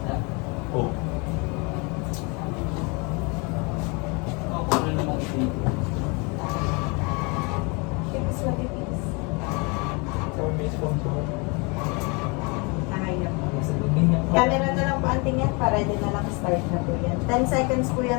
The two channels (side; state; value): right; quieter; 30.2 dB